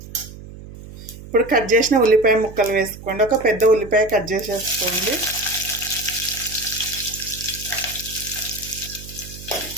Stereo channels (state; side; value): noise; right; hum, 15 dB below the sound